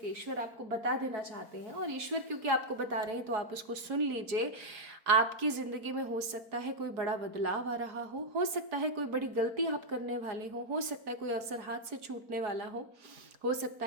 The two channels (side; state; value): left; late; 4.4 ms